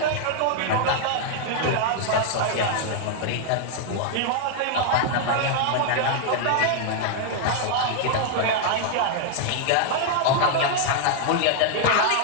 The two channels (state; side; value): different; both; correlation 0.00